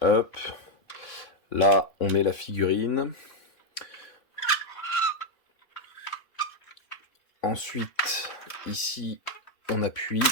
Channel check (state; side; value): late; right; 3.5 ms